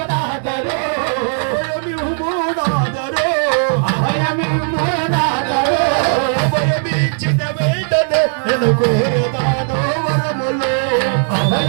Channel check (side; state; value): left; silent; digital silence